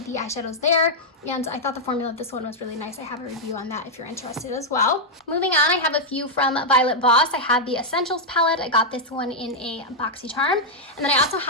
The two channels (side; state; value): both; normal; correlation -0.04